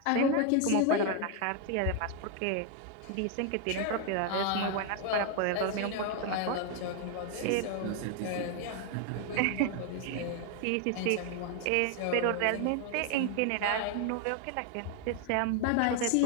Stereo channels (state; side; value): different; both; correlation 0.01